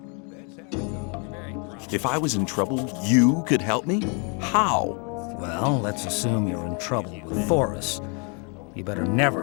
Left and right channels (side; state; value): right; quieter; 36.1 dB